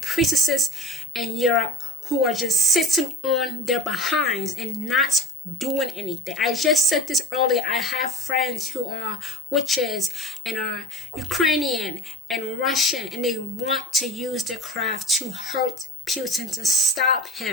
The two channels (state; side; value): normal; both; correlation 0.33